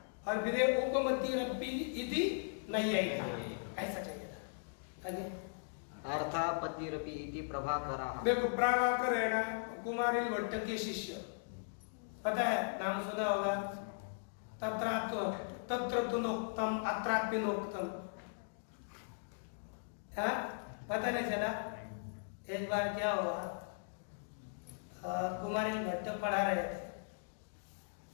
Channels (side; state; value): right; silent; digital silence